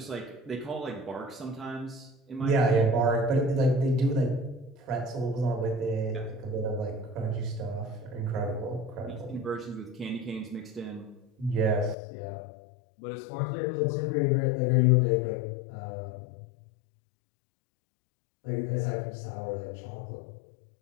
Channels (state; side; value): drops out; right; at 12.0 s